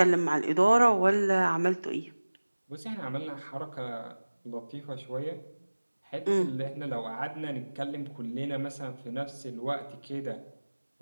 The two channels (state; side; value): inverted; both; correlation -1.00